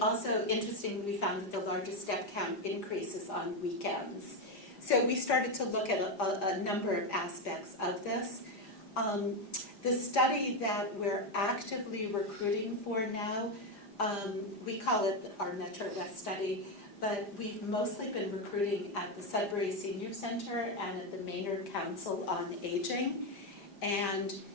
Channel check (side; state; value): right; late; 5.0 ms